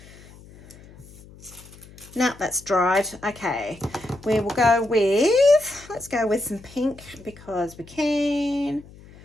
No, that's dried. Okay, we will go with, let's go with some pink because we can.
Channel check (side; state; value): left; noise; hum, 21 dB below the sound